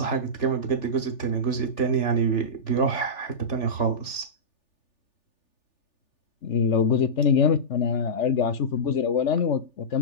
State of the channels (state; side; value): late; right; 3.4 ms